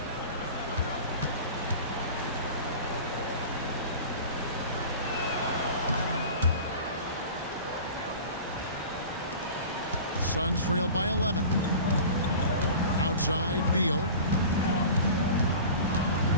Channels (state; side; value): inverted; both; correlation -0.37